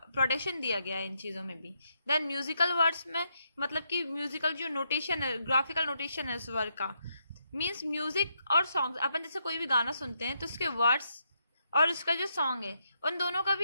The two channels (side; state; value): both; inverted; correlation -0.79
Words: प्रोटेक्शन दिया गया है इन चीज़ों में भी। देन म्यूजिकल वर्ड्स में, मतलब कि म्यूजिकल जो नोटेशन है, ग्राफिकल नोटेशन है उस वर्ड का, मीन्स म्यूजिक और सॉन्ग, अपन जैसे कोई भी गाना सुनते हैं तो उसके वर्ड्स और उसका जो सॉन्ग है उन दोनों का